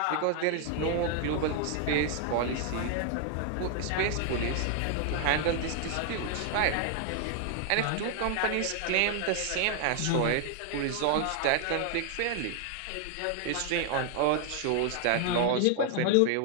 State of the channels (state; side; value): different; both; correlation 0.00